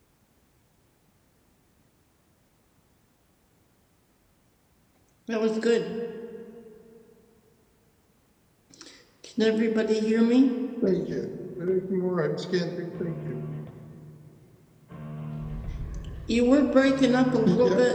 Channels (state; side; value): identical; both; correlation 1.00